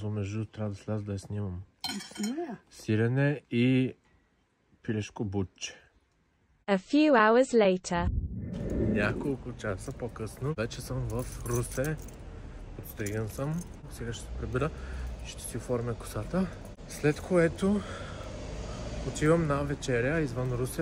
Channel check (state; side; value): identical; both; correlation 1.00